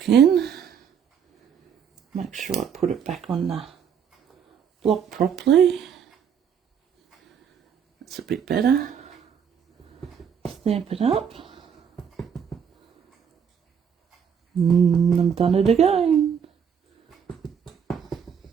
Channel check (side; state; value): left; quieter; 7.5 dB